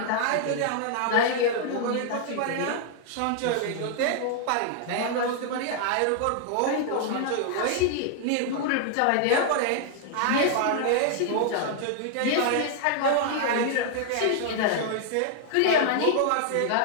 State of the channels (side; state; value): both; different; correlation 0.00